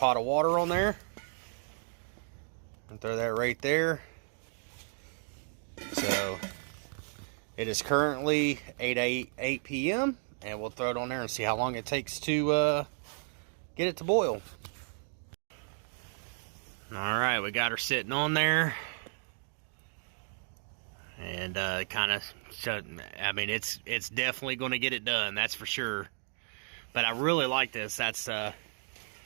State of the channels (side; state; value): left; silent; 56 dB below the other